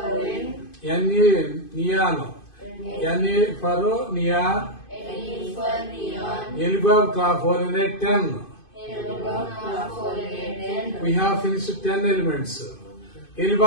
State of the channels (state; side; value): late; right; 2.5 ms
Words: Neon. Na for neon. Elibab Knapolene 10. We have finished 10 elements.